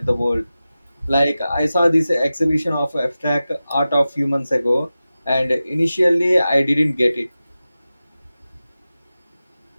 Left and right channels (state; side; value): inverted; both; correlation -0.94